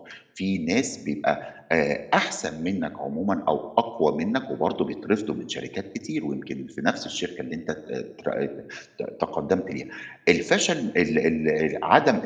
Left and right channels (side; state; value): both; identical; correlation 1.00